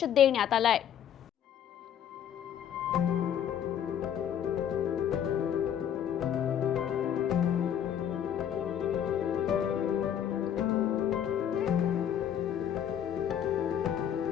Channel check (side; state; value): right; quieter; 9.5 dB